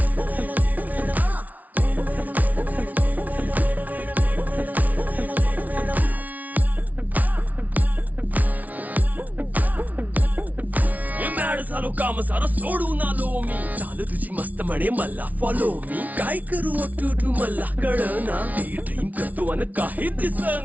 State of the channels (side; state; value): left; late; 0.074 ms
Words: झालो काम सारं सोडून आलो मी चाल तुझी मस्त म्हणे मला फॉलो मी काय करू टू मला कळना ती ड्रीम करतो आणि काही